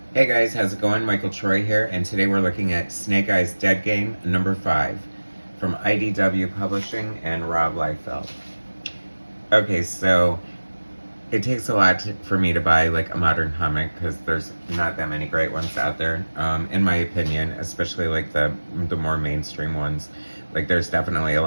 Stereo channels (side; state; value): both; inverted; correlation -1.00